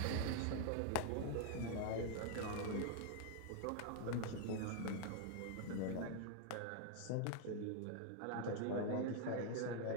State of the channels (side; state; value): both; different; correlation 0.00